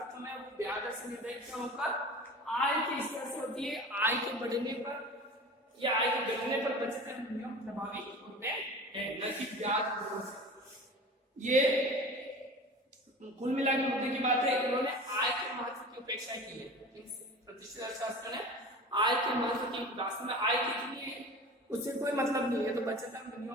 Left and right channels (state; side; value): normal; both; correlation 0.36